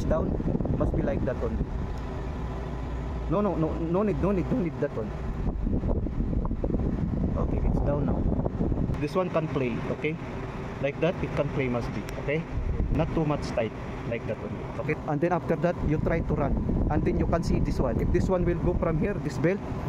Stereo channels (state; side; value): identical; both; correlation 1.00